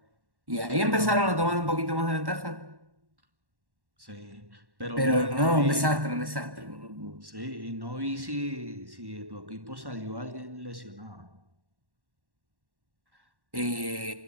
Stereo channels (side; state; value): left; late; 1.1 ms